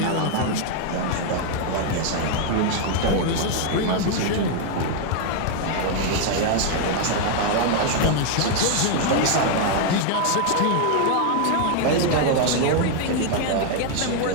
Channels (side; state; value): both; different; correlation 0.00